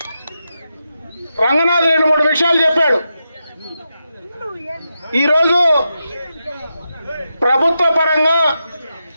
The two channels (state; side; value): inverted; both; correlation -0.88